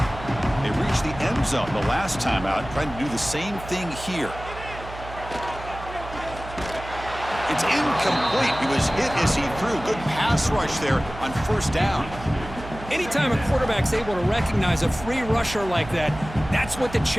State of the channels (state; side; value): noise; right; hum, 13 dB below the sound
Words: They reached the end zone the last time out, trying to do the same thing here. It's incomplete. He was hit as he threw. Good pass rush there on 1st down. Anytime a quarterback's able to recognize a free rusher like that, that's what the